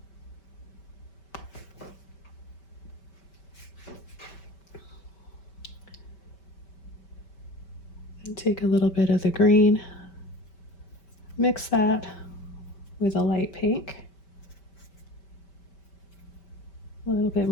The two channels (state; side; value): late; right; 5.1 ms